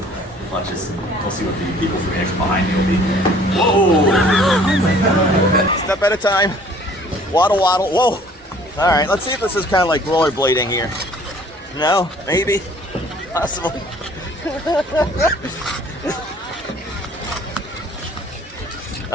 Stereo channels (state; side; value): normal; both; correlation 0.54